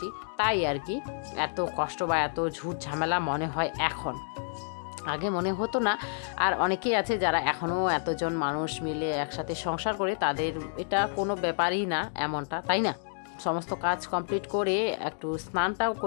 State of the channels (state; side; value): silent; right; digital silence